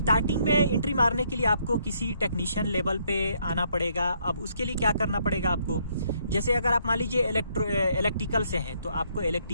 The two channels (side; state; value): both; inverted; correlation -0.70